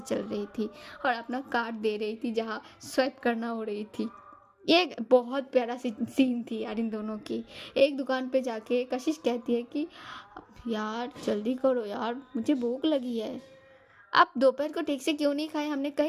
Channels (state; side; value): identical; both; correlation 1.00